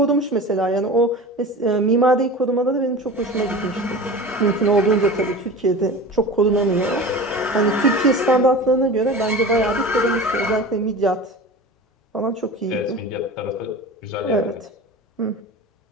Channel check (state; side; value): normal; both; correlation 0.34